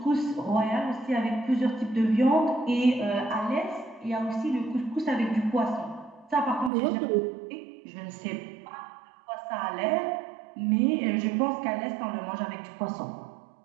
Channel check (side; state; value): left; drops out; at 6.7 s